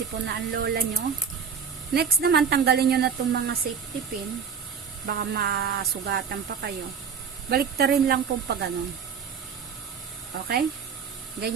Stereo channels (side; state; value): left; quieter; 6.8 dB